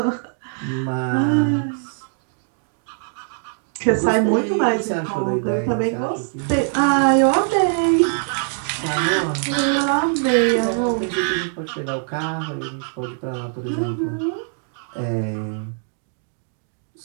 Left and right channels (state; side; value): silent; left; digital silence